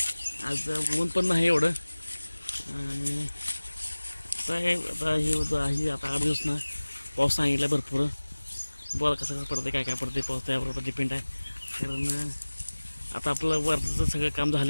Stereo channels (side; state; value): both; inverted; correlation -1.00